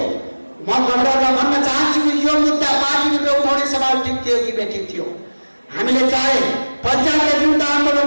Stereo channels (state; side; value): inverted; both; correlation -1.00